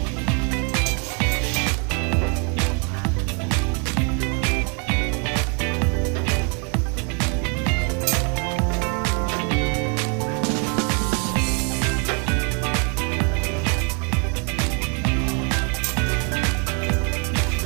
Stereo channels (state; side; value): quieter; left; 36.1 dB